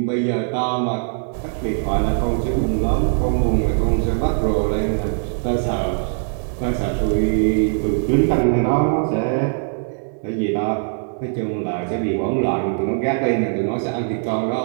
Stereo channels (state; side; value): silent; left; digital silence